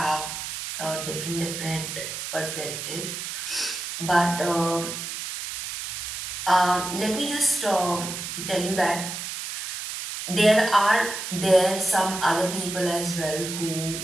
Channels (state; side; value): noise; right; hiss, 6 dB below the sound